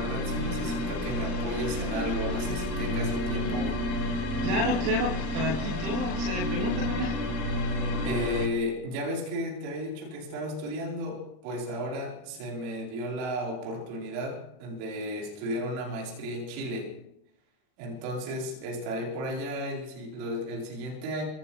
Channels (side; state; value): left; late; 39 ms